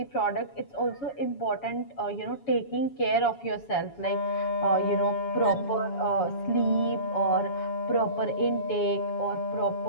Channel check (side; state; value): right; late; 7.1 ms